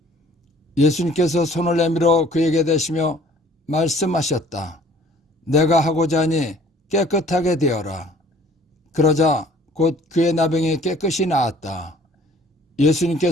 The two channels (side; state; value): both; normal; correlation 0.54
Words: 예수님께서 손을 내밀어 그에게 대시며 말씀하셨다. 내가 하고자 하니 깨끗하게 되어라. 그러자 곧 그의 나병이 깨끗이 나았다.